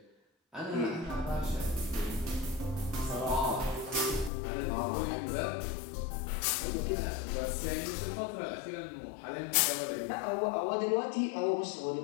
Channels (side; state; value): right; drops out; at 4.3 s